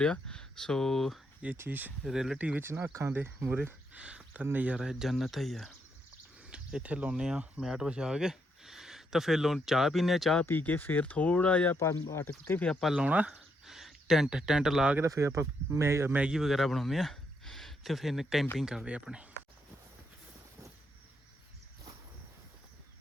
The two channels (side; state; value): both; normal; correlation 0.77